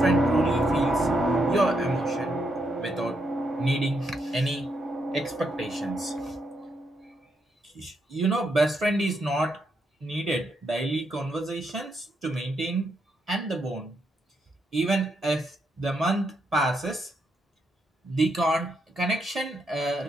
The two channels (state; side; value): normal; both; correlation 0.79